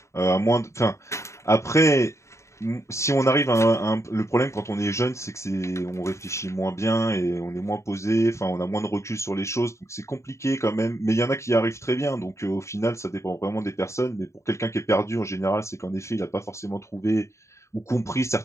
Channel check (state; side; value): late; right; 0.14 ms